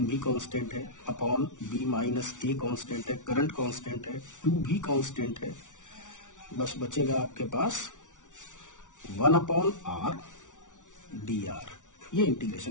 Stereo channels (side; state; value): right; late; 0.87 ms